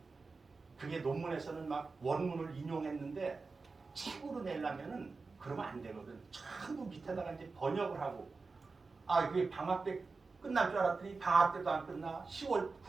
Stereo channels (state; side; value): quieter; left; 4.2 dB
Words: 그게 논문에서는 막 원문을 인용했는데 책으로 내려면은 그러면 안 되거든. 전부 밑에다가 이제 번역을 하고 그게 방학 때 끝날 줄 알았더니 방학 때도 안 끝나.